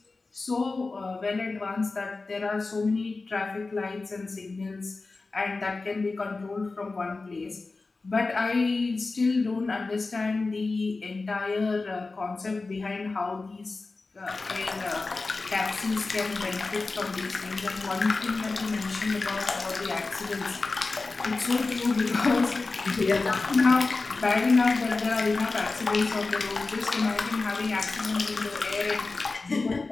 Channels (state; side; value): quieter; right; 3.7 dB